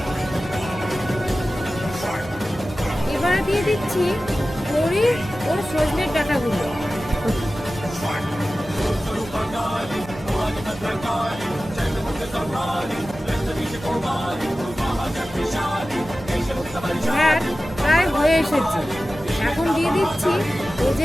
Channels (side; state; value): right; noise; hum, 17 dB below the sound